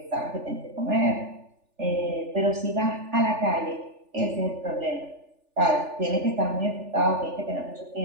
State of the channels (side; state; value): left; late; 3.4 ms